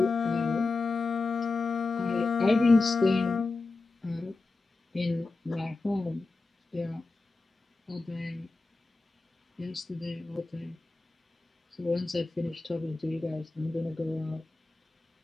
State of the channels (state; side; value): quieter; right; 3.5 dB